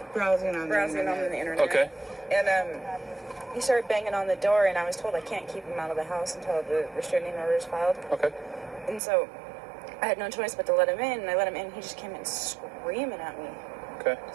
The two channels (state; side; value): drops out; left; at 9.0 s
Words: Browsing on the internet. Okay. And he started banging on the door, and I was told I can't keep him out of the house until the restraining order is filed. Okay. And so I had no choice but to let him in, and I let him in. He just came in screaming at me. Okay.